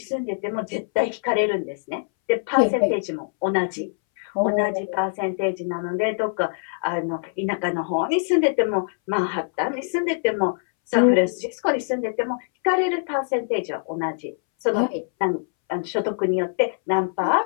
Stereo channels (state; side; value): silent; right; 62 dB below the other